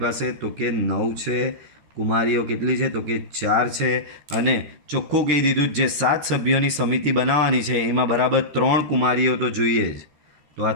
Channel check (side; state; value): left; late; 14 ms